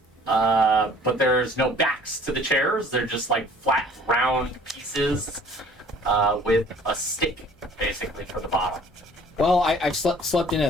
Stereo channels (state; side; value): normal; both; correlation 0.53